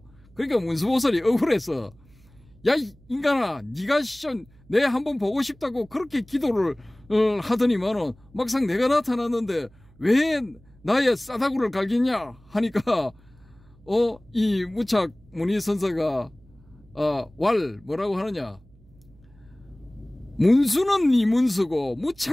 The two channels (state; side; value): noise; right; hum, 28 dB below the sound